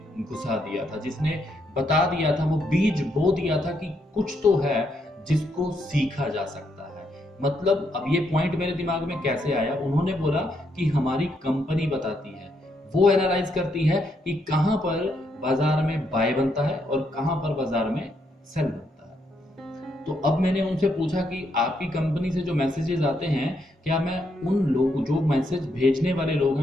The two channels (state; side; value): normal; both; correlation 0.77